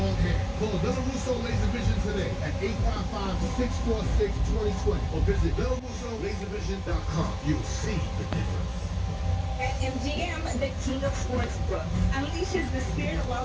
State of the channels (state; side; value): identical; both; correlation 1.00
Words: long hair. Call Della Russo Laser Vision today at 855-646-2020 or visit DellaRussoLaserVision.com. You'll see the difference. At MGM, the king of sportsbook, unleashes the spirit of